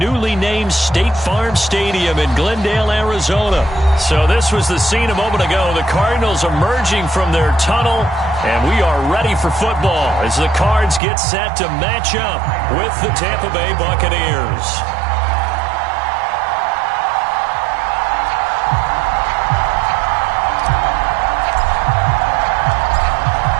named State Farm Stadium in Glendale, Arizona. So this was the scene a moment ago. The Cardinals emerging from their tunnel, and we are ready for football as the Cards get set to match up with the Tampa Bay Buccaneers.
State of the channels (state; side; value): drops out; left; at 11.0 s